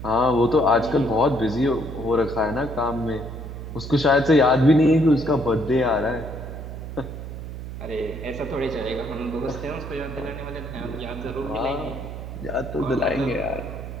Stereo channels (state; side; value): noise; right; hum, 9 dB below the sound